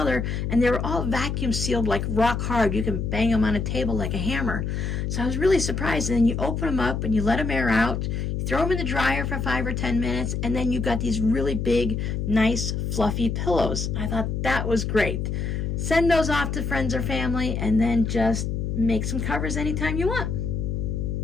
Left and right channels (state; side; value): noise; left; hum, 2 dB below the sound